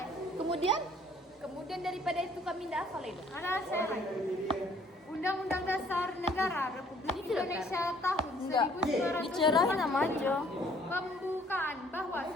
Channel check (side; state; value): both; normal; correlation 0.59